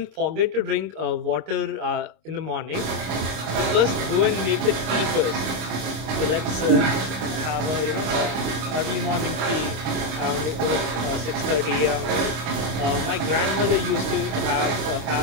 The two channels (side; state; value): left; late; 26 ms